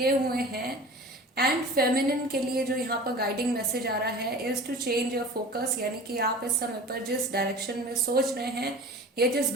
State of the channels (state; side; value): normal; both; correlation 0.39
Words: हुए हैं। एंड फेमिनिन के लिए जो यहाँ पर गाइडिंग मैसेज आ रहा है is to change your focus, यानी कि आप इस समय पर जिस डायरेक्शन में सोच रहे हैं या जिस